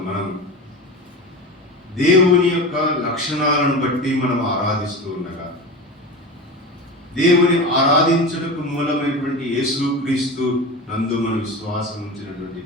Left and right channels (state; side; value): normal; both; correlation 0.28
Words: మనం దేవుని యొక్క లక్షణాలను బట్టి మనం ఆరాధిస్తూ ఉండగా, దేవుని ఆరాధించుటకు మూలమైనటువంటి యేసుక్రీస్తు నందు మన విశ్వాసం ఉంచినటువంటి